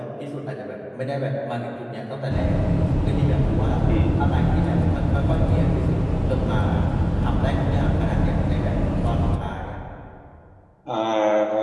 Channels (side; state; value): both; identical; correlation 1.00